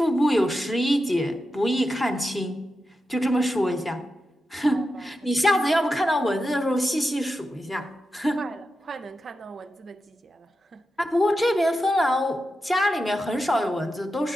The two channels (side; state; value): both; normal; correlation 0.90